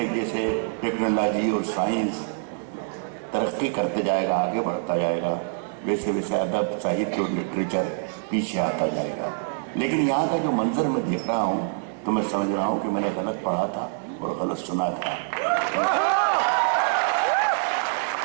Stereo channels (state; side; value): silent; left; 62 dB below the other